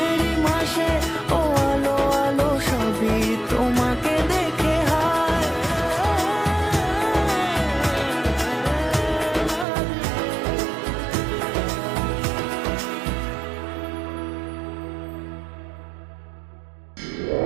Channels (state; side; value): drops out; left; at 9.7 s